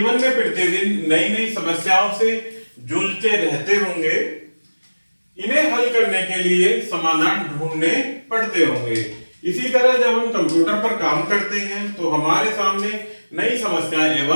में प्रतिदिन नई नई समस्याओं से जूझते रहते होंगे। इन्हें हल करने के लिए समाधान ढूंढने पड़ते होंगे। इसी तरह जब हम कंप्यूटर पर काम करते हैं तो हमारे सामने नई समस्याएं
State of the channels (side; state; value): both; inverted; correlation -1.00